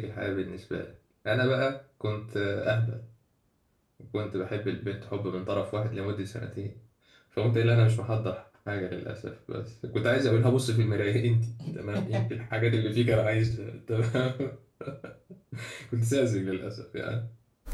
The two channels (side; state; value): both; identical; correlation 1.00